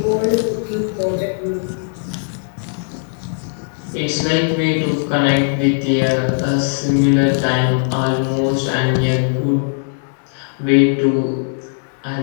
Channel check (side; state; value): right; silent; digital silence